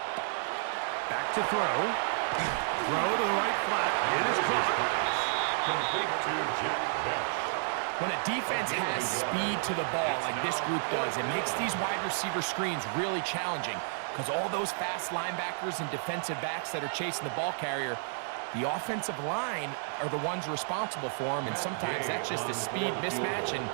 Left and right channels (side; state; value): left; silent; digital silence